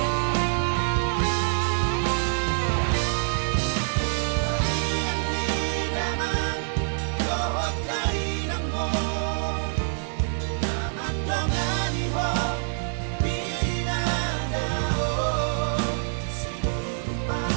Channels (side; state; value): left; silent; digital silence